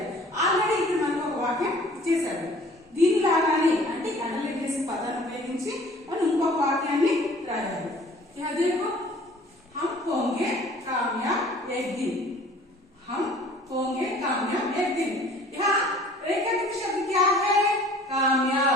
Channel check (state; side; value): normal; both; correlation 0.50